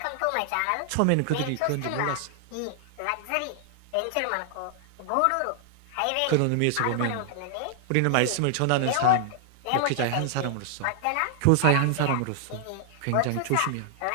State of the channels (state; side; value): different; both; correlation 0.00